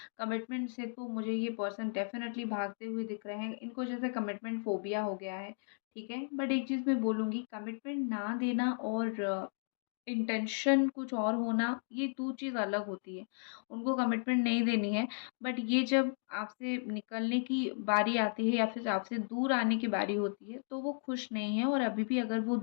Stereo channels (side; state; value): right; silent; digital silence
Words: कमिटमेंट से तो मुझे ये पर्सन डेफ़िनेटली भागते हुए दिख रहे हैं। इनको जैसे कमिटमेंट फ़ोबिया हो गया है, ठीक है? बट एक चीज़ मैं बोलूँगी कमिटमेंट ना देना और इंटेंशन कुछ और होना, ये 2 चीज़ अलग होती है। उनको कमिटमेंट नहीं देनी है, बट ये जब आपसे निकलने की बारी आती है या फिर आपसे दूर आने की बारी होती है, तो वो खुश नहीं है और अभी भी अगर वो